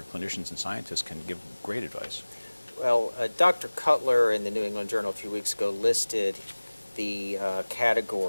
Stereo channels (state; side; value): inverted; both; correlation -1.00